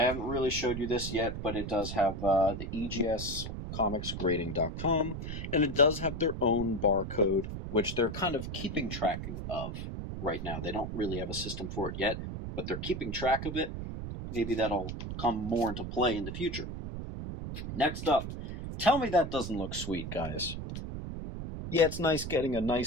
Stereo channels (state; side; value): noise; right; rumble, 6 dB below the sound